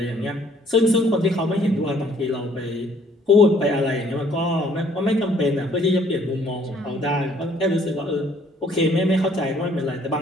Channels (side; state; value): both; normal; correlation 0.61